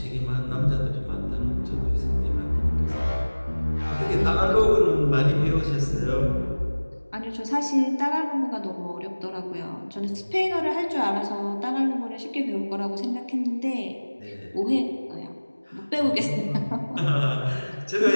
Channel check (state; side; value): inverted; both; correlation -1.00